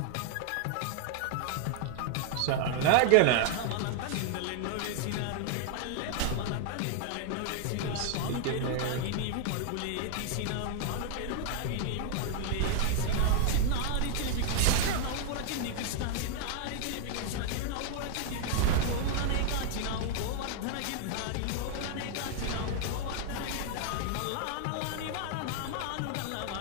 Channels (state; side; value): different; both; correlation 0.00